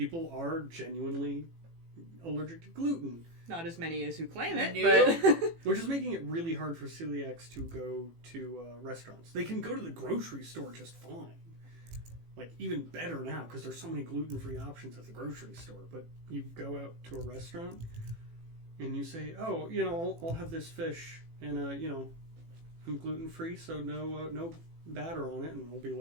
are genuinely allergic to gluten. Not as many as who claim it, Nope. but... Which is making it really hard for celiacs to go to restaurants. They can go to the grocery store just fine. Like, even better now, because there's so many gluten-free options at the grocery store. But you go out to a restaurant, and you say, oh, you know, I'll have this fish, and, you know, I'm gluten-free, so no batter on it. And we'll be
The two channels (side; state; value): left; late; 18 ms